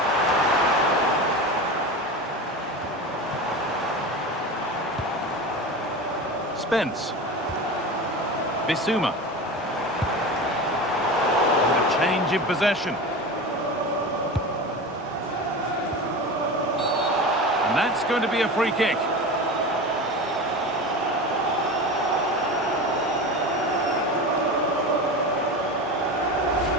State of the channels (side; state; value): both; normal; correlation 0.28